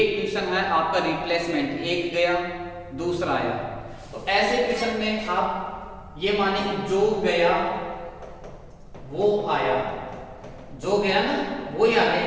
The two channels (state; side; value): identical; both; correlation 1.00